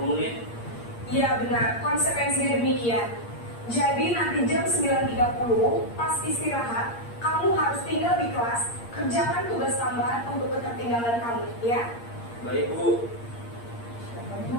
menit. Iya, benar. Konsekuensinya demikian. Jadi nanti jam 9.30 pas istirahat, kamu harus tinggal di kelas, kerjakan tugas tambahan untuk ketertinggalan kamu, ya? Baik Bu.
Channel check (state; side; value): late; right; 8.6 ms